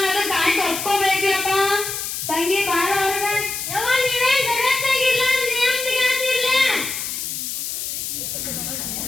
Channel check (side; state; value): left; noise; hiss, 4 dB below the sound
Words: ಅದ ಗಾಂಟ್ ಒಪ್ಕೋಬೇಕಪ್ಪ. ತಂಗಿ ಬಾರ ಅವ್ರಗ ಯವ್ವ ನೀವೇನ್ ಜಗತ್ತಾಗಿಲ್ಲ ನಿಯಮ್ದಿಗಾತಿರ್ಲ.